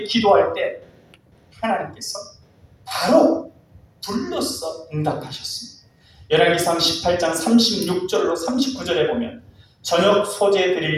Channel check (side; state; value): both; identical; correlation 1.00